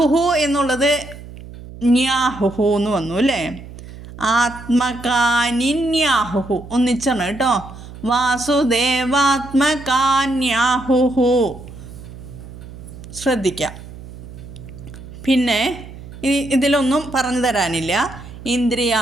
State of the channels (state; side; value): noise; right; hum, 15 dB below the sound